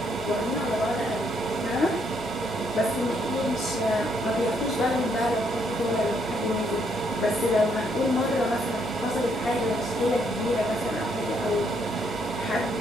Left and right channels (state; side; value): normal; both; correlation 0.72